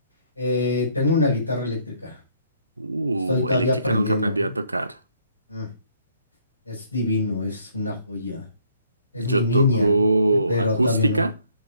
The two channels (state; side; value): inverted; both; correlation -0.65